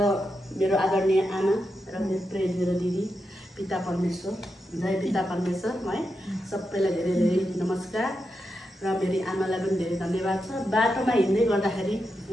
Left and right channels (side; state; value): both; normal; correlation 0.87